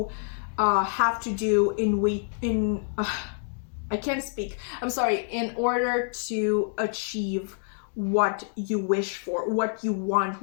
have to do I can't speak. I'm sorry. In order to achieve what you wish for, what you want,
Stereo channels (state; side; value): silent; right; 60 dB below the other